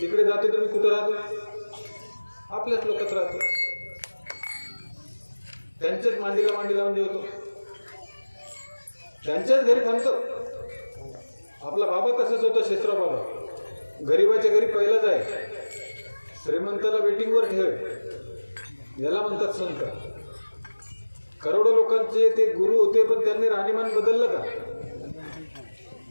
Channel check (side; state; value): both; inverted; correlation -1.00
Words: जातो. तर मी कुठं राहतो? आपल्याच लोकात राहतो. त्यांच्याच मांडीला मांडी लावून जेवतो, त्यांच्याच घरी थांबतो. आपला बाबा तसाच होता, शेषराव बाबा. गरीबाच्या घरी पहिलाच आहे. श्रीमंताला वेटिंगवर ठेव, याला म्हणतात संत. करोडो लोकांचे ते गुरु होते, पण त्यांनी राहणीमान बदललं का?